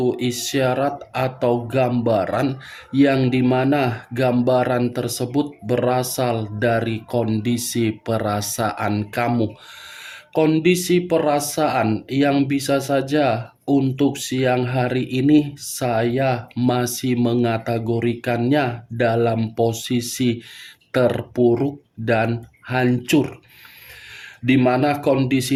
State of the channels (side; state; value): both; identical; correlation 1.00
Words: isyarat atau gambaran, yang dimana gambaran tersebut berasal dari kondisi perasaan kamu. Kondisi perasaan yang bisa saja untuk siang hari ini saya masih mengategorikannya dalam posisi terpuruk dan hancur, di mana